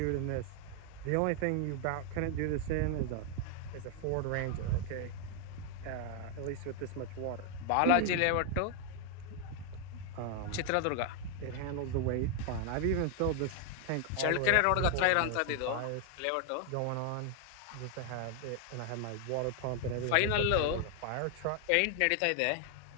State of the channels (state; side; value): different; both; correlation 0.00